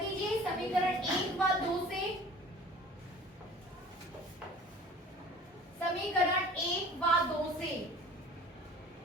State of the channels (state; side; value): normal; both; correlation 0.44